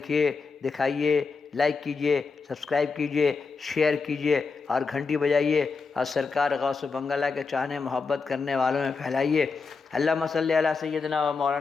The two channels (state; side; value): quieter; right; 4.7 dB